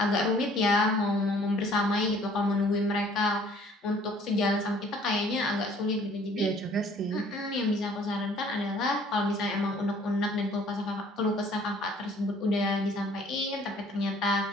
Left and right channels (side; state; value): both; normal; correlation 0.56